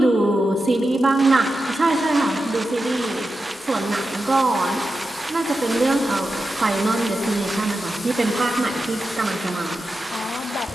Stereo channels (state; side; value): normal; both; correlation 0.90